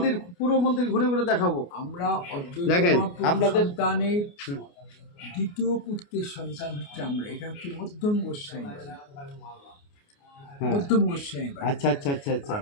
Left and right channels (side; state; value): right; late; 29 ms